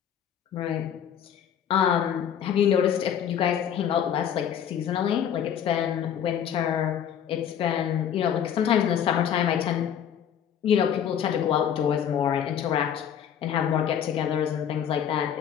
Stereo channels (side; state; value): right; quieter; 9.0 dB